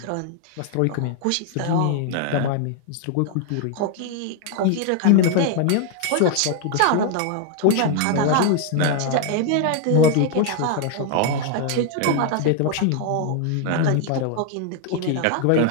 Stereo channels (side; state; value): both; different; correlation 0.00